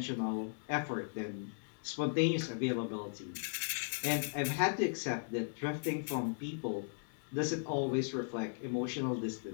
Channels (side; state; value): right; silent; digital silence